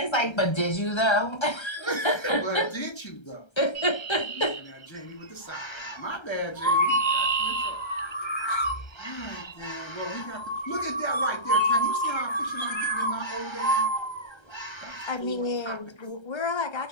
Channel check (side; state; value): right; late; 1.3 ms